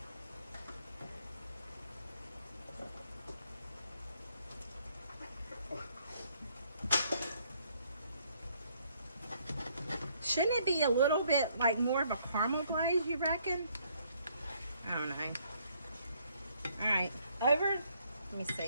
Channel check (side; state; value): both; inverted; correlation -0.67